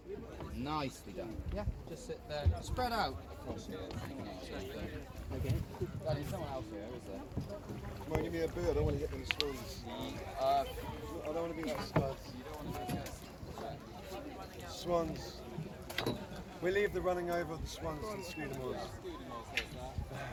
Nicely done. Yeah, just sit there. Spread out across here. Okay. There's someone else here, is there? Come on, give me a boo. I don't want to hit them swans. I don't want to be like studs. You don't want to go. Swans. We leave the running over of the swans to the Scudamores.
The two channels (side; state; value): both; identical; correlation 1.00